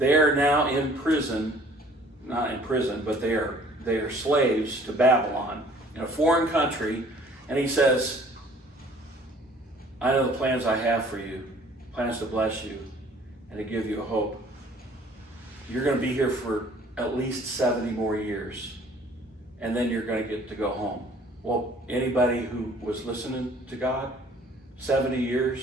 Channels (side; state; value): both; normal; correlation 0.54